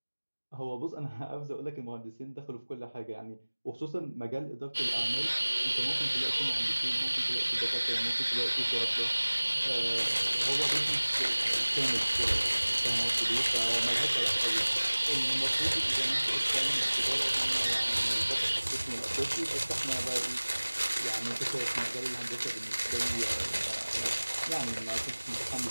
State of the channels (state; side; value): inverted; both; correlation -1.00